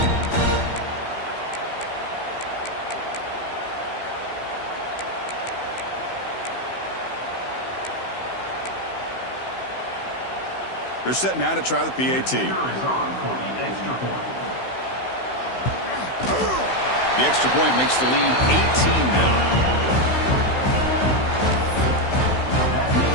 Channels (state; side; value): late; right; 16 ms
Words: They're set now to try the PAT. The extra point makes the lead 18 now.